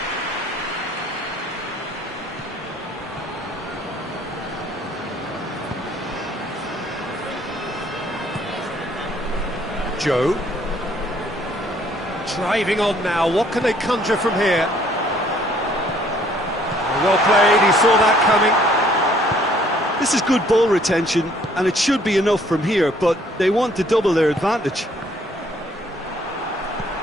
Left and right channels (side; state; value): both; normal; correlation 0.61